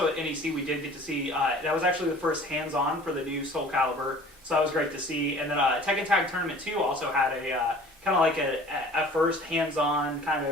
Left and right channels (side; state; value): both; normal; correlation 0.47